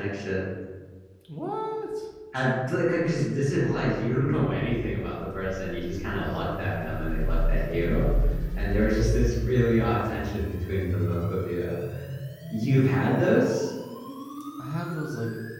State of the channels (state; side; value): identical; both; correlation 1.00